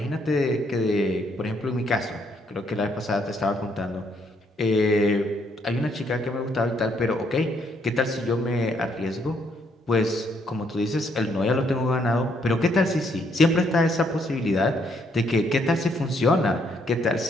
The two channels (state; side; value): normal; both; correlation 0.71